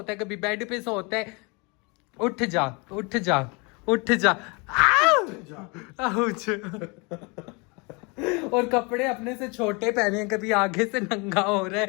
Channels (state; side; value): quieter; right; 29.8 dB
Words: है, कभी बेड पे सोता है। उठ जा, उठ जा, उठ जा। आउच। और कपड़े अपने से छोटे पहने हैं, कभी आगे से नंगा हो रहा